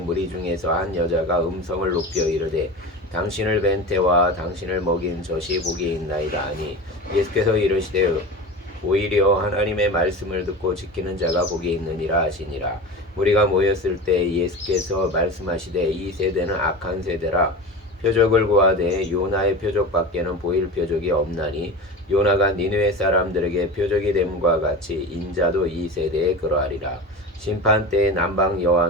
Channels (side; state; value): both; normal; correlation 0.30